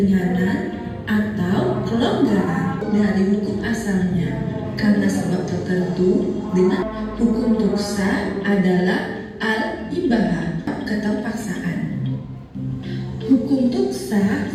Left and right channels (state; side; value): identical; both; correlation 1.00